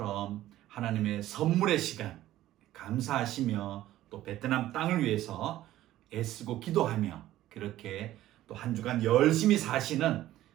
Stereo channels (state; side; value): quieter; left; 14.3 dB